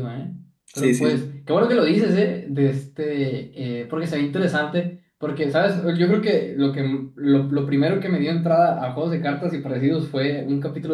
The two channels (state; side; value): identical; both; correlation 1.00